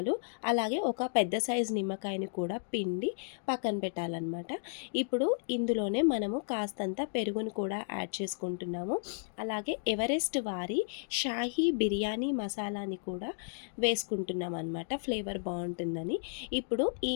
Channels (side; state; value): right; silent; digital silence